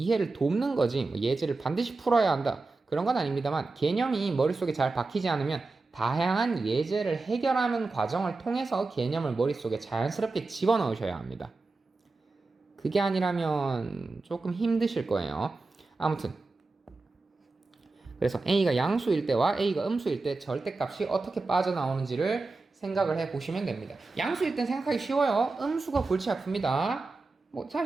돕는 거지, 뭐 예제를 반드시 풀어야 한다 그런 건 아닙니다만, 개념이 머릿속에 잘 박히지 않으면 다양한 예제를 해결하는 과정을 통해서 개념을 머릿속에 자연스럽게 집어넣으셔야 합니다. 그게 아니라면 조금 힘드실 거예요. 아무튼 그래서 a가 양수일 때와 a가 음수일 때 절대값이 어떻게 빠져나오는지를 생각을 해보시면 됩니다. 양수일 땐 생각하기 쉬워요. 음수가 골치 아픕니다. 뭐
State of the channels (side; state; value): left; quieter; 3.6 dB